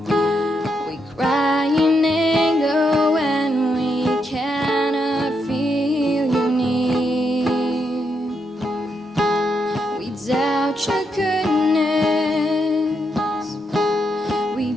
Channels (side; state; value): both; normal; correlation 0.81